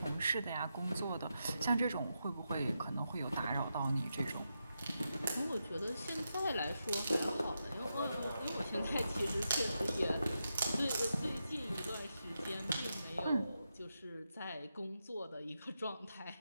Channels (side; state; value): both; inverted; correlation -0.86